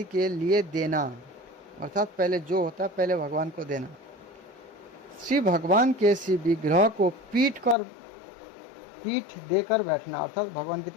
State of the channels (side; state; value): right; drops out; at 7.8 s